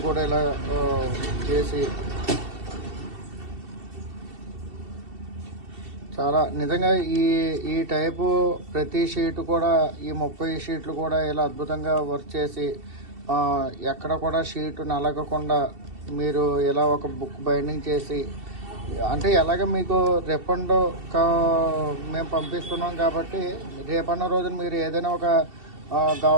కూడా ఇలా చేసి చాలా నిజంగా ఈ టైపు ప్రతి షీట్ కూడా ఈ 30 షీట్లు కూడా ఇలా అద్భుతంగా వర్క్ చేసి ఎక్కడ కూడా షీట్ నలగకుండా మీరు ఇలా ఒక బుక్ బైండింగ్ చేసి, అంటే ఎలాగ మీకు రిఫండ్ మేము పంపిస్తున్నాం కాబట్టి రేపన్న రోజున మీరు ఏదైనా ఒక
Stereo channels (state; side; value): late; left; 2.7 ms